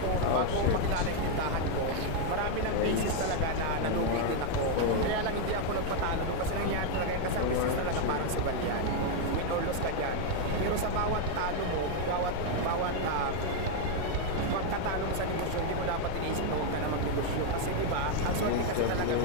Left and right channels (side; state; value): both; different; correlation 0.01